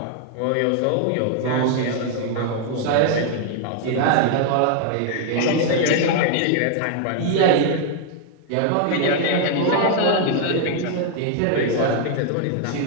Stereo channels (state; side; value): different; both; correlation 0.00